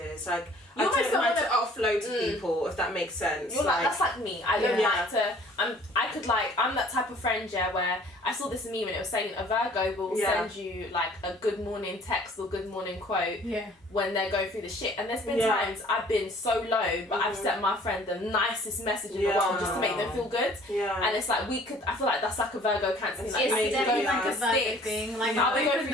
Like I don't like to offload to people, if that makes sense. That's like me. I don't like to. I'm that type of friend where I saw this meme and it was saying a Virgo will send you like a good morning text or good morning quote when they're going through the shit. And there's been times I've been so low, but I've sent my friend the nicest message in the world just to make them feel good. And it's like I feel like that's like a Virgo Cancer thing. Like, it's definitely like a Virgo thing. Like I'll be going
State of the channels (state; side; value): normal; both; correlation 0.54